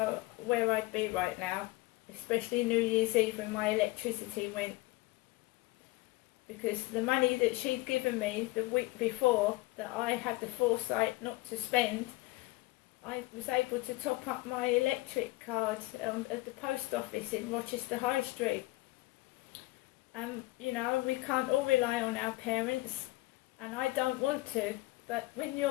where I'd be right now, especially New Year's Eve when my electricity went, because the money that she'd given me the week before that I had the foresight not to spend, I was able to top up my electric card at the post office in Rochester High Street. You know, we can't all rely on our parents, and I don't want to, but when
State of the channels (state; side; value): quieter; right; 20.5 dB